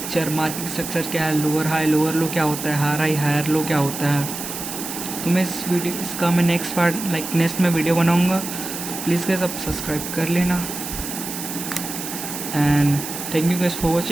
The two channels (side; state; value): right; noise; hiss, 7 dB below the sound